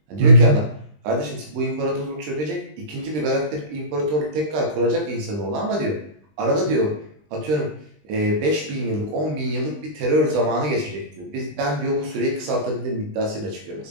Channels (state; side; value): late; left; 20 ms